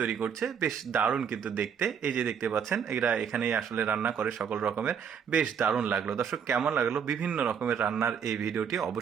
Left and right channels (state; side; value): quieter; left; 7.4 dB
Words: তৈরি করছে। বেশ দারুণ কিন্তু দেখতে, এই যে দেখতে পাচ্ছেন এরা এখানেই আসলে রান্না করে সকল রকমের। বেশ দারুণ লাগলো। দর্শক কেমন লাগলো বিভিন্ন রকমের রান্নার এই ভিডিওটি